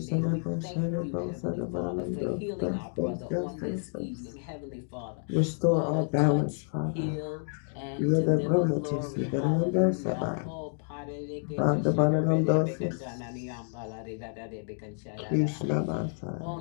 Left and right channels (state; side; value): silent; right; 58 dB below the other